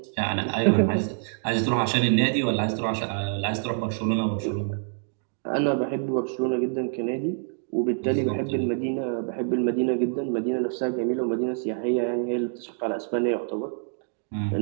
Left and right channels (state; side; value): silent; left; digital silence